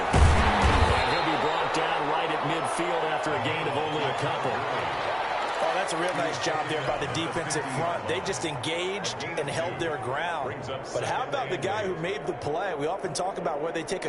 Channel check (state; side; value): identical; both; correlation 1.00